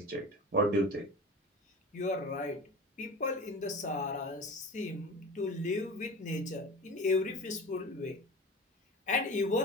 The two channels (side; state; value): both; normal; correlation 0.33